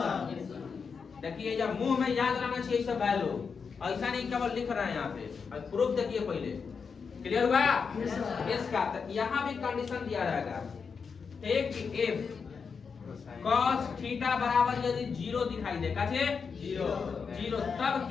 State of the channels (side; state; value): right; quieter; 5.7 dB